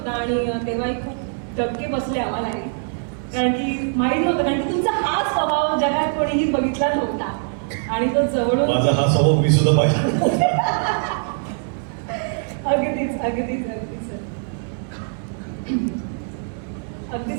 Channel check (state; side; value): silent; left; 64 dB below the other